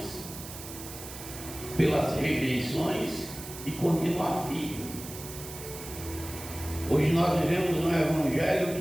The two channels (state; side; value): noise; right; hiss, 12 dB below the sound